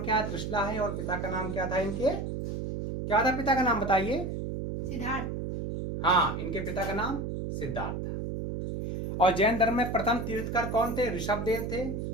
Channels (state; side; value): noise; right; hum, 4 dB below the sound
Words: है? त्रिशला है। और पिता का नाम क्या था इनके? क्या था पिता का नाम बताइए? सिद्धार्थ। हाँ, इनके पिता का नाम सिद्धार्थ था। और जैन धर्म में प्रथम तीर्थकर कौन थे? ऋषभदेव थे,